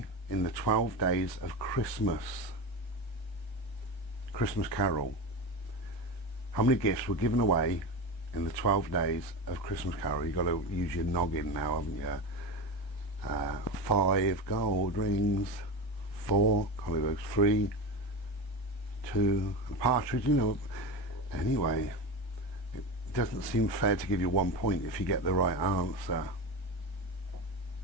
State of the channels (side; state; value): right; late; 1.2 ms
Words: in the 12 days of Christmas Carol? How many gifts were given away in the 12 days of Christmas Carol? You've got to use your noggin now, haven't you? 5 gold rings, 4 collywokes, 3, 2, a partridge, you know. Anyway, it doesn't seem fair to give you 1 point if you get the right answer.